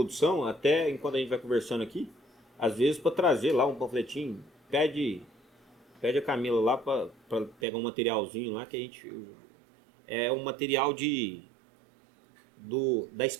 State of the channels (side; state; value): left; drops out; at 7.6 s